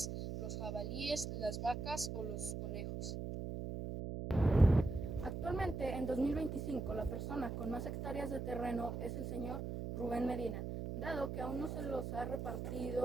los jabalíes, las vacas o los conejos. Actualmente, en 2025, la persona con más hectáreas de terreno es el señor Rubén Medina, dado que aún no se los ha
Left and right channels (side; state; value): right; noise; hum, 4 dB below the sound